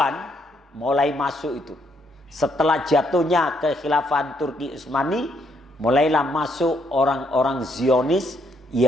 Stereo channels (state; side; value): normal; both; correlation 0.73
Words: mulai masuk itu. Setelah jatuhnya kekhilafan Turki Utsmani, mulailah masuk orang-orang Zionis